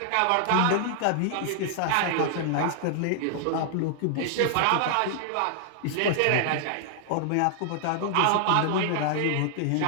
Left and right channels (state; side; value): different; both; correlation -0.01